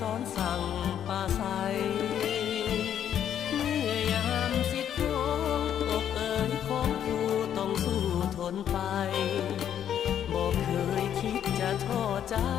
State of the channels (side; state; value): right; quieter; 9.7 dB